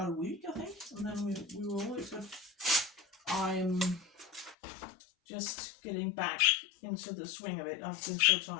a week, I think, and then we were all good. I'm just getting back into the swing of it. I've been so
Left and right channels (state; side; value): drops out; right; at 4.5 s